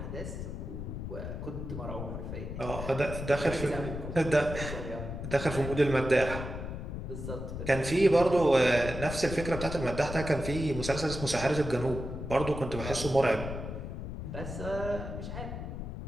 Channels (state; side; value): noise; left; rumble, 7 dB below the sound